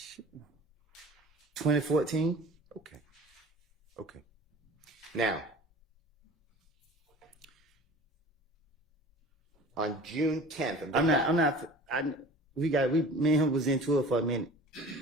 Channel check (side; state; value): both; normal; correlation 0.43